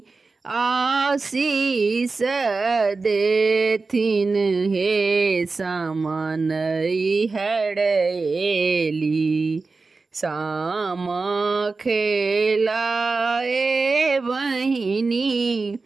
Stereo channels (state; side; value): quieter; left; 4.0 dB